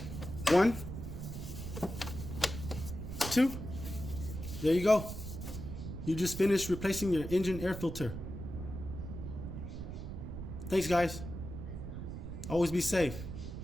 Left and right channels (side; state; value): right; noise; rumble, 7 dB below the sound